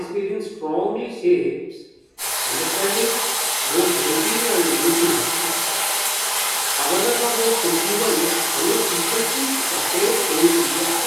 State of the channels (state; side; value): identical; both; correlation 1.00